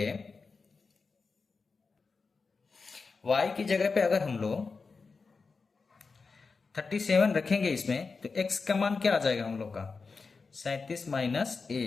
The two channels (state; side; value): quieter; right; 4.5 dB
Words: पे अगर हम लोग 37 रखेंगे इसमें, तो x का मान क्या आ जाएगा हम लोग का, 37 माइनस